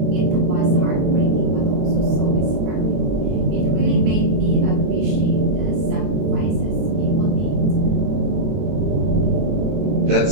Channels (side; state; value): left; late; 22 ms